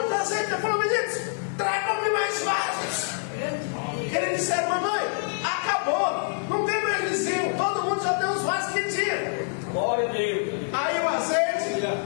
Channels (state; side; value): silent; right; 61 dB below the other